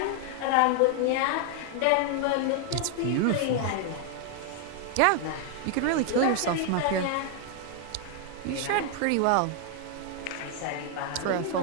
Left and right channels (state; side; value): different; both; correlation 0.00